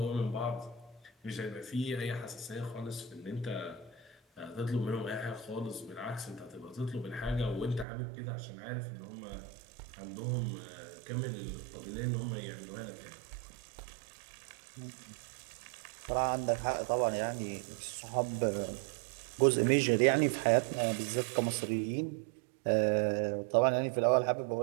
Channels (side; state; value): left; drops out; at 7.9 s